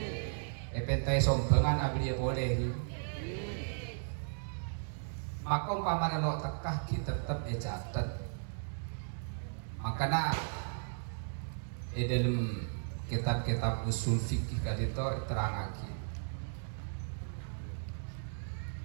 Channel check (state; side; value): silent; left; digital silence